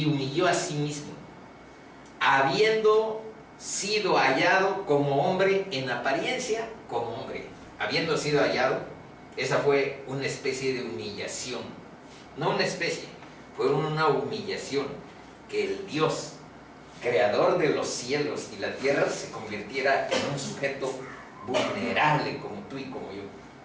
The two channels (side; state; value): both; identical; correlation 1.00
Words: humilló a sí mismo, habiendo sido hallado como hombre en apariencia, como hombre. habiendo sido hallado, esa fue una especie de humillación. No una especie, fue una humillación que el Dios, creador de los cielos y la tierra, se convirtiera en un sujeto vulnerable como tú y como yo.